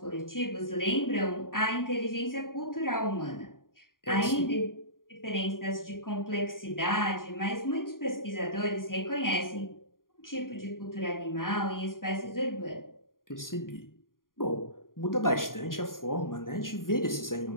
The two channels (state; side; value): late; right; 0.91 ms